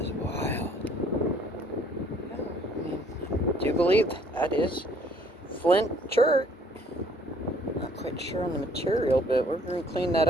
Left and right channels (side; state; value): both; normal; correlation 0.60